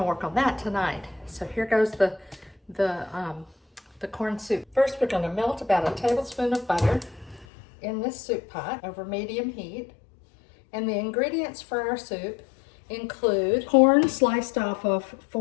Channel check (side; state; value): right; drops out; at 7.5 s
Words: work on that tonight. So here goes the corn soup. First, we're going to melt about a tablespoon of butter in this soup pot over medium heat. And the ingredients for our soup include corn sliced off of